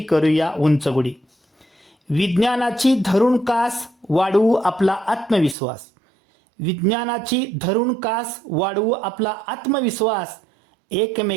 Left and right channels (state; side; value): drops out; left; at 5.6 s